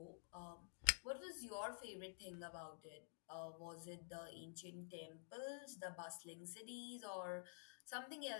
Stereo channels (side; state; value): right; silent; digital silence